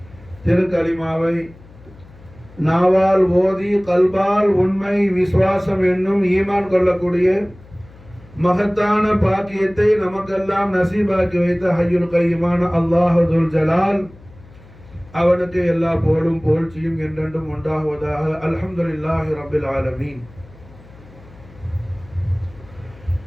திருக்கலிமாவை நாவால் ஓதி கல்பால் உண்மை விசுவாசம் என்னும் ஈமான் கொள்ளக்கூடிய மகத்தான பாக்கியத்தை நமக்கெல்லாம் நசீபாக்கி வைத்த ஹய்யுல் கய்யுமான அல்லாஹ் துல் ஜலால் அவனுக்கு எல்லா புகழும் புகழ்ச்சியும் என்றென்றும் உண்டாகுவதாக. அல்ஹம்துலில்லாஹி ரப்பில் ஆலமீன்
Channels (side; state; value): left; noise; hum, 23 dB below the sound